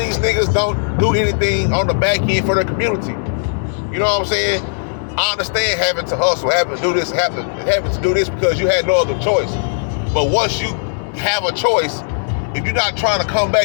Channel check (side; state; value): right; silent; digital silence